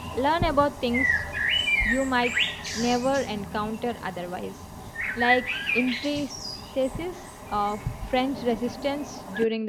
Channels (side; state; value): both; identical; correlation 1.00